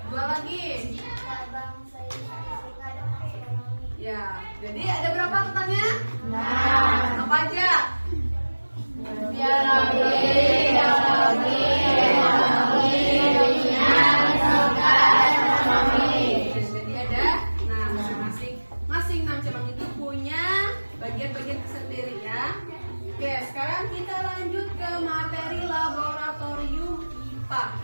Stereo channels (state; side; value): inverted; both; correlation -1.00